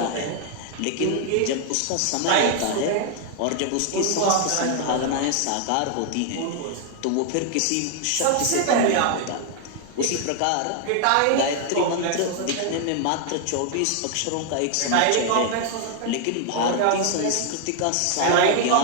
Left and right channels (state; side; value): different; both; correlation 0.00